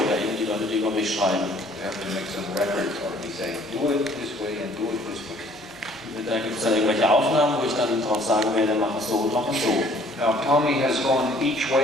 eben die Leute, die über mich schreiben. We have to make some records or we say, do it this way and do it this way. Da gibt es dann irgendwelche Aufnahmen, wo ich dann drauf sagen werde, mach es so und mach es so. Now Tommy has gone each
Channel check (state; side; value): normal; both; correlation 0.58